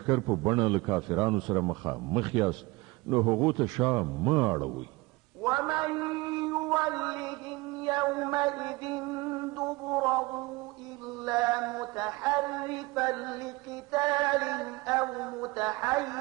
په بڼه له کافرانو سره مخ یاست نو هغو ته شا مه اړوئ. ومن يولهم يومئذ دبره إلا متحرفا لقتال أو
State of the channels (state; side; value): quieter; left; 22.9 dB